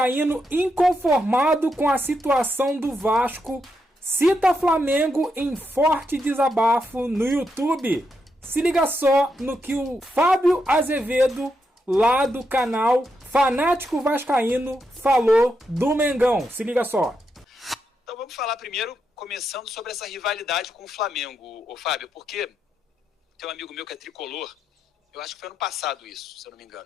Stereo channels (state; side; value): normal; both; correlation 0.83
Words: inconformado com a situação do Vasco cita Flamengo em forte desabafo no YouTube. Se liga só no que o Fábio Azevedo, lá do canal Fanático Vascaíno, falou do Mengão. Se liga só. Então vamos falar primeiro, começando sobre essa rivalidade com o Flamengo, ô Fábio, porque tem um amigo meu que é tricolor, eu acho que foi ano passado isso, se eu não me